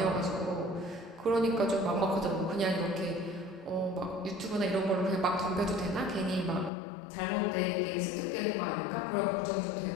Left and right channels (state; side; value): drops out; right; at 6.7 s